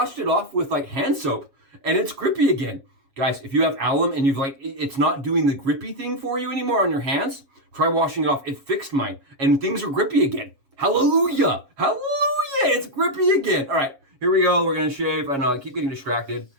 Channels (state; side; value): late; left; 7.3 ms